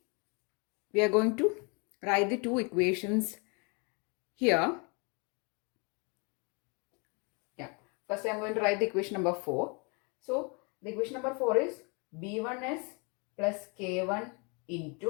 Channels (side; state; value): right; quieter; 32.8 dB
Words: we are going to write the two equations here. Yeah. First I am going to write the equation number 4. So the equation number 4 is b1s plus k1